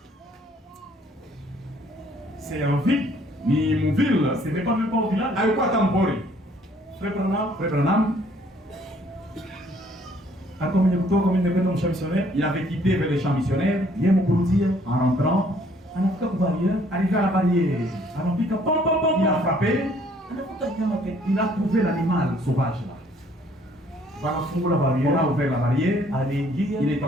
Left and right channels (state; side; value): normal; both; correlation 0.61